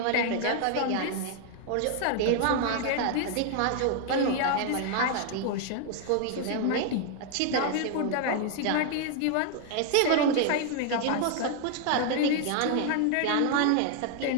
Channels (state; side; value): different; both; correlation 0.00